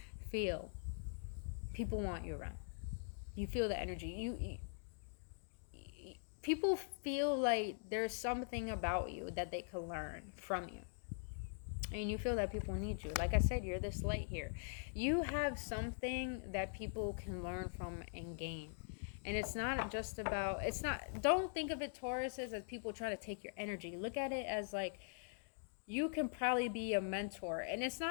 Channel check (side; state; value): right; silent; digital silence